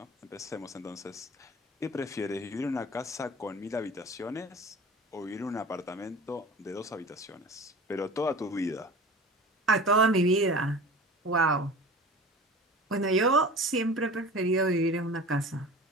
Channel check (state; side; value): normal; both; correlation 0.38